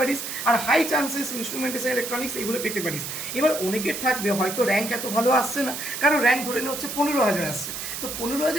আর হাই চান্সেস ইনস্ট্রুমেন্টেশন ইলেকট্রনিক্স এগুলো পেতে পারিস। এবার অনেকের থাকবে হয়তো র্যাঙ্ক এত ভালো আসছে না, কারণ র্যাঙ্ক ধরে নেওয়া হচ্ছে 15,000 আসছে। তো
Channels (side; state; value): right; noise; hiss, 6 dB below the sound